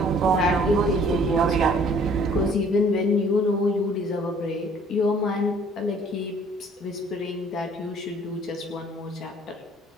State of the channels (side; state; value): both; normal; correlation 0.56